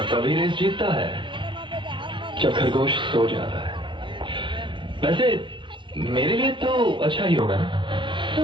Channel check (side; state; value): left; late; 0.24 ms